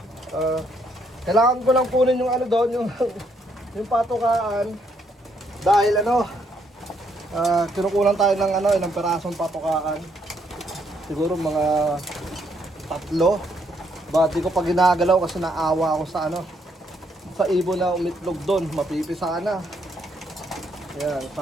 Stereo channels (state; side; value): normal; both; correlation 0.72